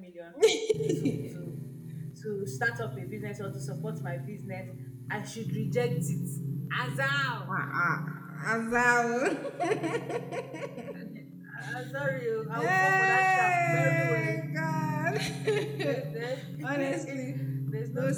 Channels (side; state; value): both; identical; correlation 1.00